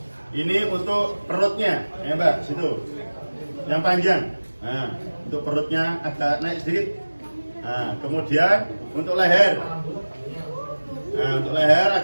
Ini untuk perutnya, ya Mbak, situ yang panjang. Nah, untuk perutnya agak naik sedikit. Nah, kemudian untuk leher. Nah, untuk leher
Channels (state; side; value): inverted; both; correlation -1.00